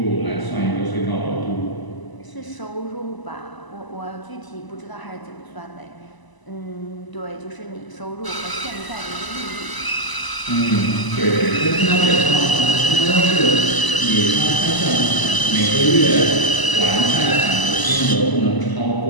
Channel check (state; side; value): late; right; 1.0 ms